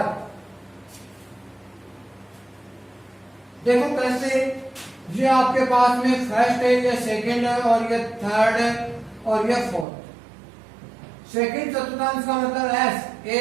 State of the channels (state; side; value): drops out; left; at 9.9 s